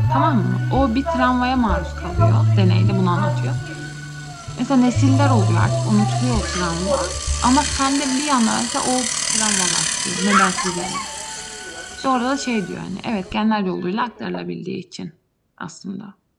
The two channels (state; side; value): identical; both; correlation 1.00